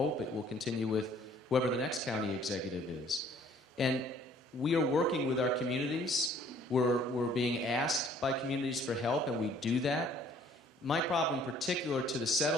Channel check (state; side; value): normal; both; correlation 0.58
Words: it will continue with whoever the next county executive is. And we are working with our communities. We're being asked by communities for help, and we do that. My problem in particular to the